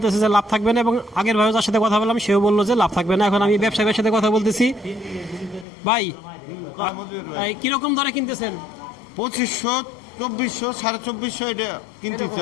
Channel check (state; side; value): drops out; right; at 5.7 s